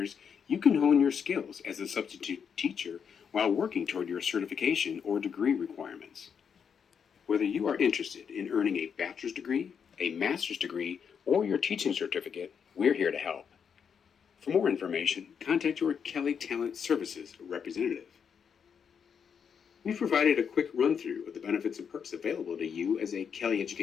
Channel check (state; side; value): quieter; right; 7.0 dB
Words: you can hone your skills as a substitute teacher while working toward your certification or degree requirements. Whether you are interested in earning a bachelor's degree, a master's degree, or your teaching certificate, we're here to help. For more information, contact your Kelly Talent Services representative. We've provided a quick run-through of the benefits and perks available to you as a Kelly